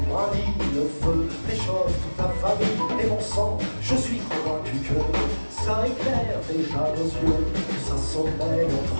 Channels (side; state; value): both; inverted; correlation -1.00